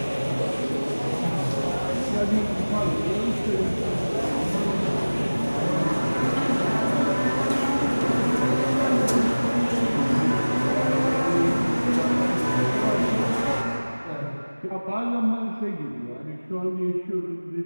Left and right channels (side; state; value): both; inverted; correlation -1.00